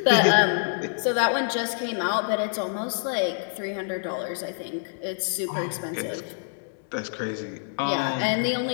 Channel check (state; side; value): silent; right; 61 dB below the other